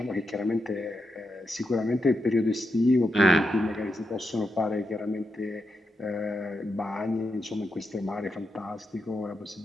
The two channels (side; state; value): both; normal; correlation 0.85